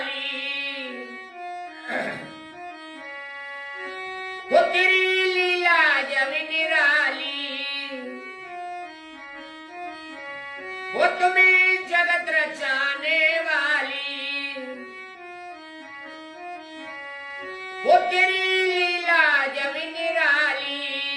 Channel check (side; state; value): both; identical; correlation 1.00